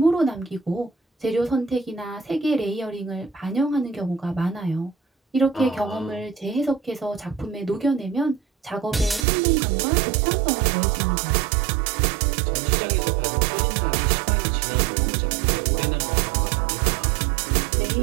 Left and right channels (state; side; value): drops out; left; at 9.2 s